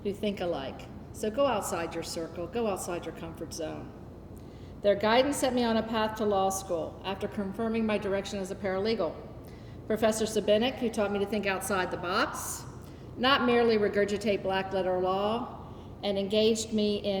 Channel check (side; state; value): both; identical; correlation 1.00